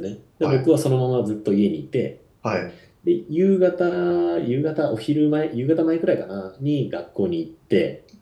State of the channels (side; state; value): both; identical; correlation 1.00